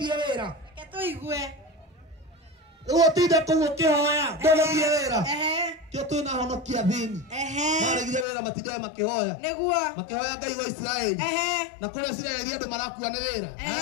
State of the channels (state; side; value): drops out; right; at 8.2 s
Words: wĩra rĩu ũtinde kũu ũkĩhoya ndũgũthiĩ wĩra kĩo twĩna honokia thĩni maregire wĩra matindaga makĩhoya Ngai wa Isiraeli na kũrĩa Isiraeli andũ marakua nĩ wĩra